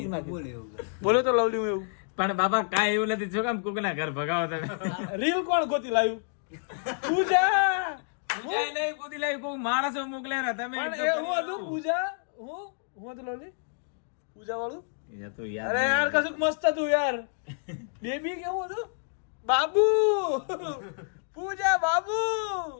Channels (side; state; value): right; silent; digital silence